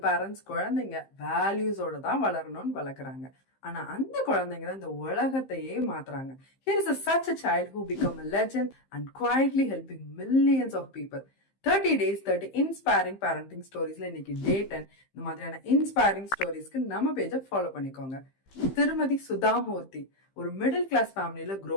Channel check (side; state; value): right; late; 15 ms